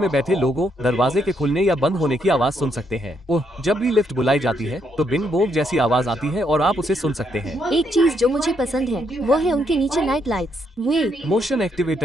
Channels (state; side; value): normal; both; correlation 0.75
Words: बैठे लोगों, दरवाजे के खुलने या बंद होने की आवाज सुन सकते हैं। जब भी लिफ्ट बुलाई जाती है तो बिंग बोंग जैसी आवाज आती है और आप उसे सुन सकते हैं। एक चीज जो मुझे पसंद है वो है उनके नीचे नाइट लाइट्स। वे मोशन